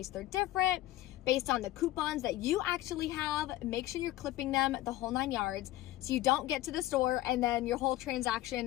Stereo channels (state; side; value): quieter; right; 15.7 dB